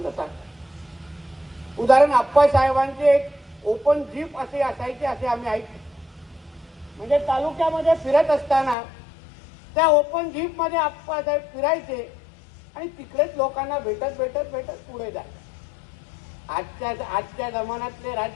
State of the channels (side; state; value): right; drops out; at 8.8 s